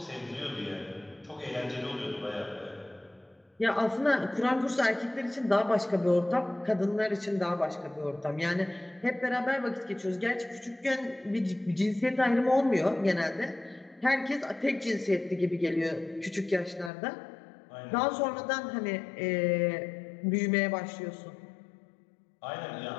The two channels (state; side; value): drops out; right; at 16.9 s